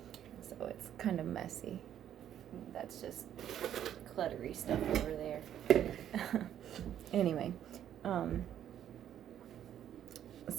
So it's kind of messy. That's just cluttery stuff over there. Anyway,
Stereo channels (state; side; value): quieter; left; 10.5 dB